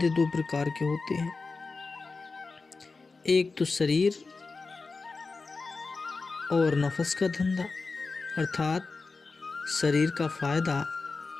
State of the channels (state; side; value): quieter; right; 4.1 dB